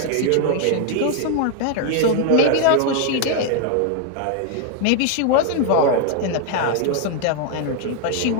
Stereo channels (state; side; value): different; both; correlation 0.01